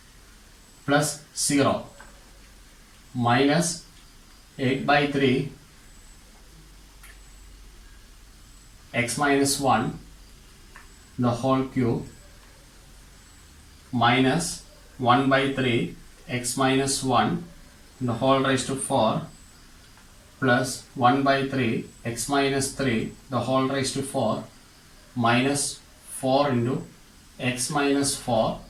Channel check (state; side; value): identical; both; correlation 1.00